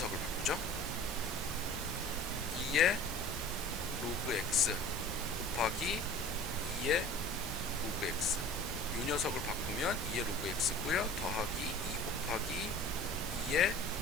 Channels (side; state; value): both; normal; correlation 0.43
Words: 바꾸죠. 2의 로그 x 곱하기 2의 로그 x 요 녀석을 바꾸면 2의 로그 x고요. 더하기 2 곱하기 2의